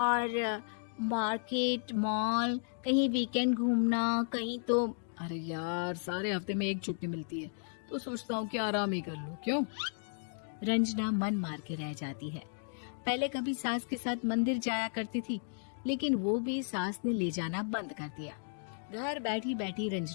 मार्केट, मॉल, कहीं वीकेंड घूमना, कहीं तो। अरे यार सारे हफ्ते में एक छुट्टी मिलती है, तो सोचता हूँ कि आराम ही कर लूं। क्यों? रंजना मन मार के रह जाती है। पहले कभी सास के साथ मंदिर जाया करती थी, लेकिन वो भी सास ने ले जाना बंद कर दिया। घर बैठी बैठी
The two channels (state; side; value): silent; right; digital silence